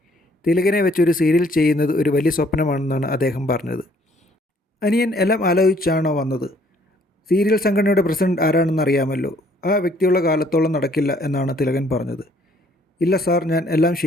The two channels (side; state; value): both; normal; correlation 0.63